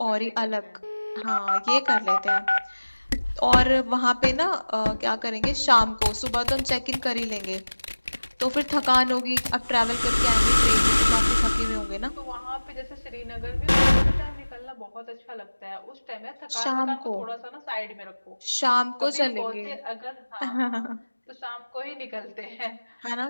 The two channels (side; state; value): both; inverted; correlation -1.00